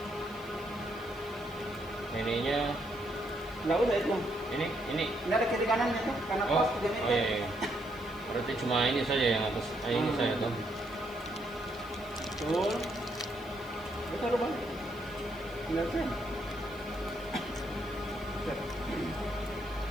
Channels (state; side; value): noise; right; hiss, 24 dB below the sound